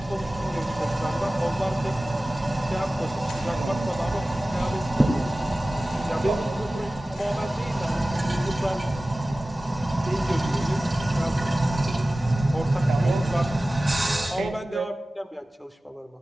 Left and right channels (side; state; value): both; normal; correlation 0.96